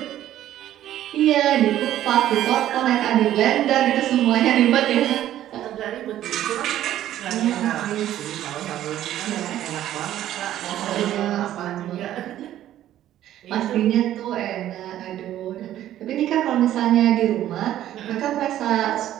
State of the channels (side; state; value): left; quieter; 12.5 dB